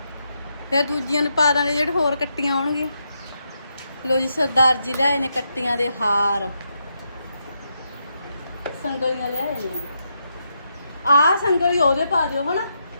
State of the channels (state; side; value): inverted; both; correlation -0.82